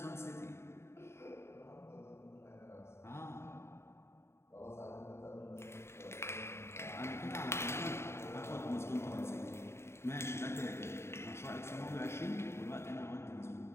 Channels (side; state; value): right; late; 0.12 ms